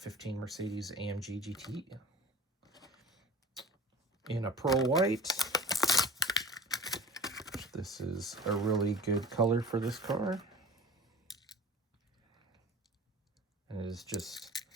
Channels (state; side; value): normal; both; correlation 0.41